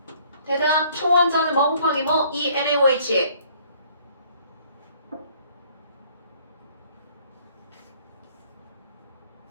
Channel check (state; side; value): inverted; both; correlation -0.59